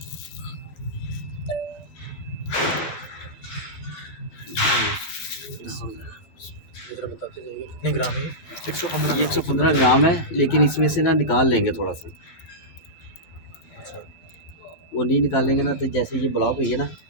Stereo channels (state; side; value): late; right; 12 ms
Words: जरा बताते जाइए कितने ग्राम है? 115 ये 115 ग्राम है, लेकिन इसमें से ना निकाल लेंगे थोड़ा सा। अच्छा। वो नहीं निकालेंगे ना तो जैसे ये ब्लॉक हुई है ना,